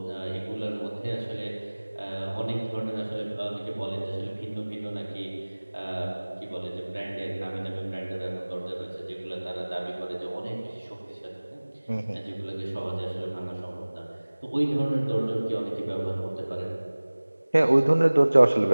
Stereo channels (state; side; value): inverted; both; correlation -1.00